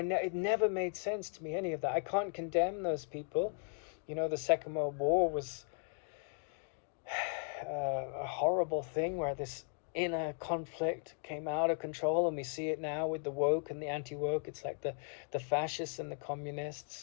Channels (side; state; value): right; silent; 53 dB below the other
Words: never made sense to me, any of that. I can't condemn those people. The Second World War was a horrible thing where this inner conflict came out of control, and we see it now with the woke and the anti-woke. It's like the fascists and the